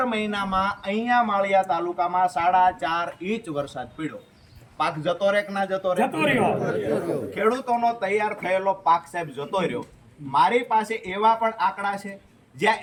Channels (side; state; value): both; identical; correlation 1.00